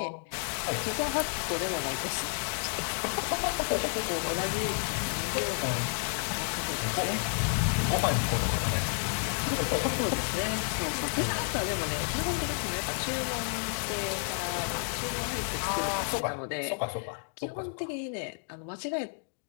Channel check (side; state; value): right; silent; 57 dB below the other